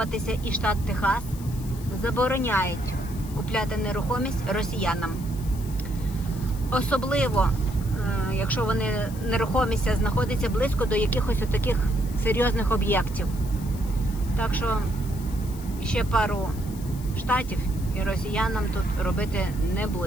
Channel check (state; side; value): noise; left; hiss, 18 dB below the sound